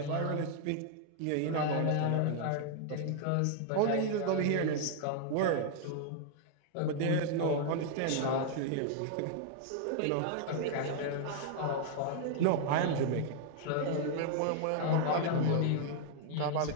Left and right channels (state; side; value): different; both; correlation 0.00